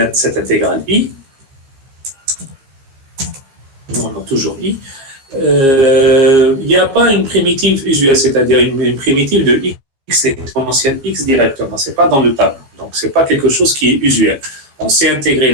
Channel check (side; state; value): left; late; 15 ms